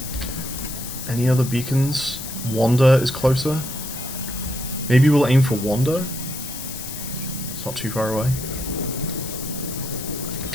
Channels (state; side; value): noise; left; hiss, 9 dB below the sound